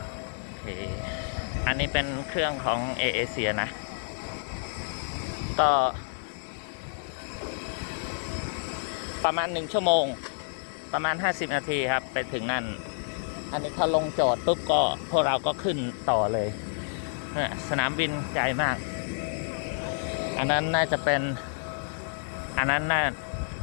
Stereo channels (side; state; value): right; silent; digital silence